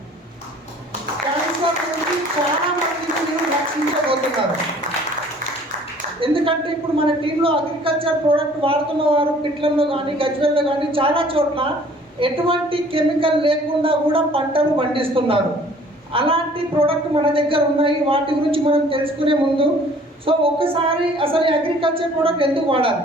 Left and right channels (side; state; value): both; normal; correlation 0.53